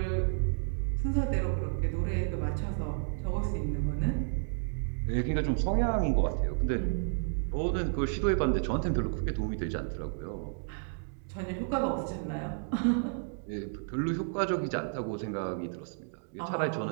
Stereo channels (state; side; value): silent; left; digital silence